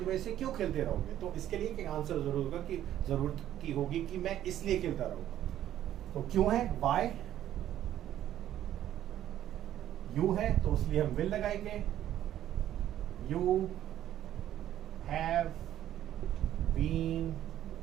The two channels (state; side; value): quieter; left; 11.9 dB